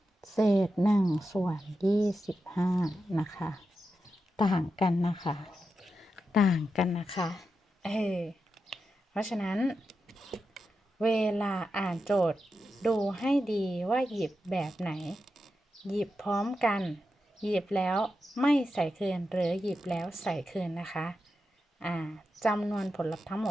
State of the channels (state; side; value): normal; both; correlation 0.89